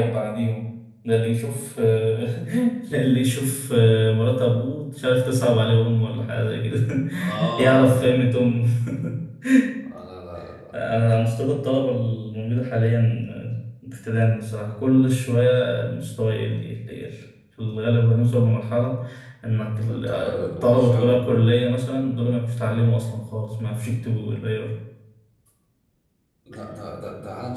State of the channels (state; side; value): identical; both; correlation 1.00